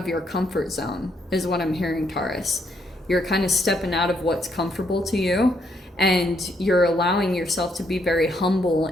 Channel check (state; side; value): normal; both; correlation 0.74